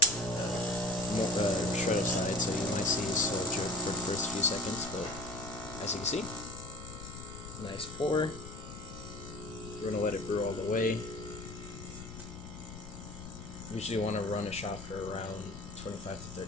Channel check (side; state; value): left; noise; rumble, 12 dB below the sound